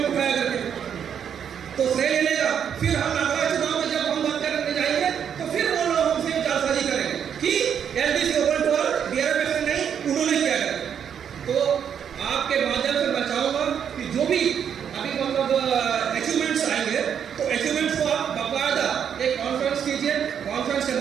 उठाया करके, तो श्रेय ले लेगा। फिर हम अगला चुनाव में जब हम बात करने जाएंगे तो फिर वो लोग हमसे जालसाजी करेंगे कि एलडीसी ओपन टू ऑल, बीआरएमएस ने नहीं, उन्होंने किया है। तो आपके माध्यम से मैं चाहूंगा कि जो भी अभी मतलब अचीवमेंट्स आएंगे तो अचीवमेंट्स को आप बाकायदा एक कॉन्फ्रेंस कीजिए, कॉन्फ्रेंस के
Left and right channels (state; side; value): quieter; left; 8.2 dB